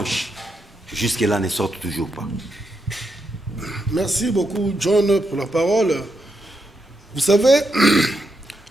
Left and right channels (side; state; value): both; normal; correlation 0.82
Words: jusque-là, ne sort toujours pas? Merci beaucoup, John, pour la parole. Vous savez,